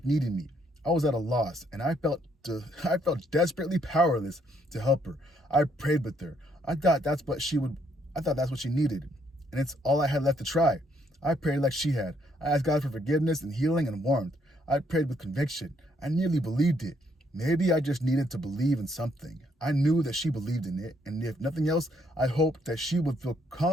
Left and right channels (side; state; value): both; normal; correlation 0.70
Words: needed me. I was at a loss, and I felt desperately powerless to help her. I prayed with her. I thought that's what she needed, and it's all I had left to try. I prayed like she had. I asked God for forgiveness and healing and warmth. I prayed with conviction. I nearly believed it. Maybe I just needed to believe in something. I knew that she believed in it, and if nothing else, I hoped that she would feel